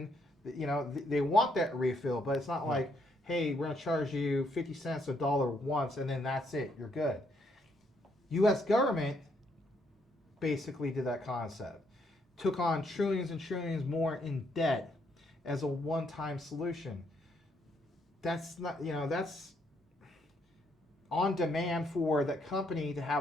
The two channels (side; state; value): both; normal; correlation 0.73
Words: that, you know, they want that refill, but it's not like, hey, we're going to charge you 50 cents, $1 once, and then that's it, you're good. U.S. government basically did that concept. Took on trillions and trillions more in debt as a one-time solution. That's not, you know, that's on demand for that company to